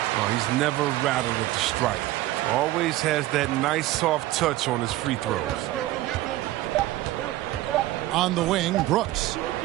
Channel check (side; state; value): left; quieter; 16.1 dB